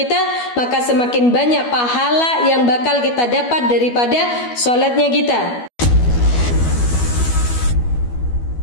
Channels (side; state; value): right; late; 12 ms